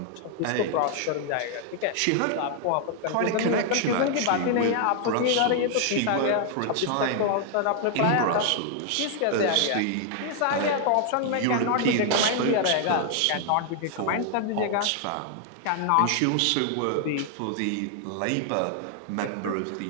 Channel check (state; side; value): different; both; correlation 0.00